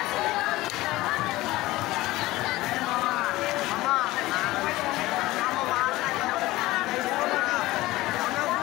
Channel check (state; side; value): quieter; right; 18.2 dB